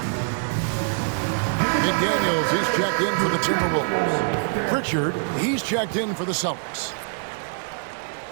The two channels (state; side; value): silent; left; digital silence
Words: McDaniels, he's checked in for the Timberwolves. Pritchard, he's checked in for the Celtics.